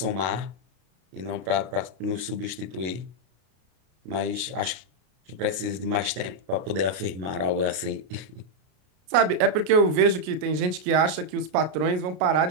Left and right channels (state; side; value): late; left; 33 ms